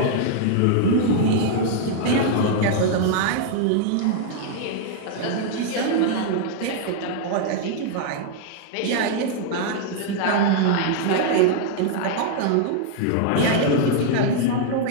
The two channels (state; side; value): different; both; correlation 0.00